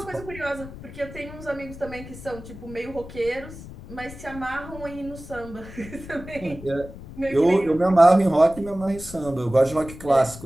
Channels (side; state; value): left; noise; rumble, 14 dB below the sound